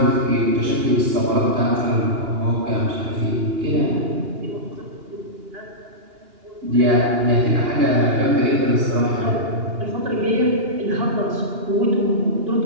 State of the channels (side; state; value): left; late; 2.8 ms